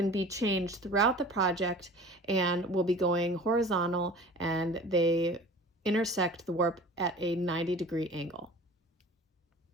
be changed throughout the project and will be going horizontal, and they intersect the warp at a 90-degree angle.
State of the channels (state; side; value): normal; both; correlation 0.42